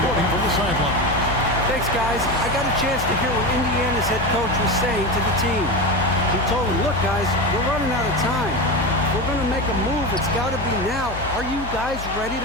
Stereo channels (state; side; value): noise; left; hum, 10 dB below the sound